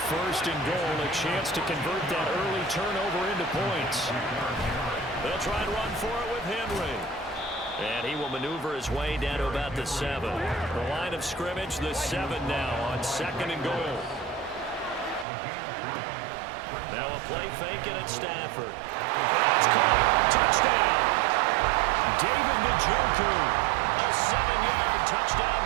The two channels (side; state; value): left; drops out; at 15.2 s